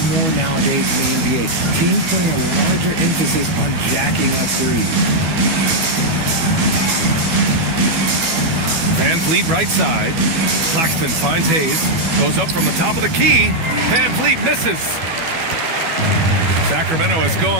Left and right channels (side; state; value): left; late; 12 ms